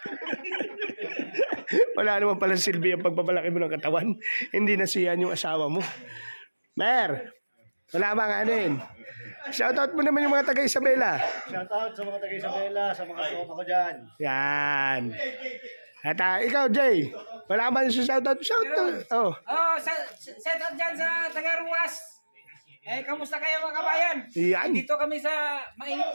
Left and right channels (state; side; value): inverted; both; correlation -1.00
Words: Wala naman pala silbi ang pagpapalaki mo ng katawan. Hindi na siyan yung asawa mo. Mer, wala bang ano yun? Shoutout mo naman yung mga taga Isabela. Shoutout sa mga taga-Isabela, sa mga tropa ko dyan. Yan. At ikaw, Jay, wala ba yung shoutout? Shoutout. Oh. Oh, set up dyan sa Tagaruas. Kamusta kayo mga kabayan? Yan. Dito kami sa mainit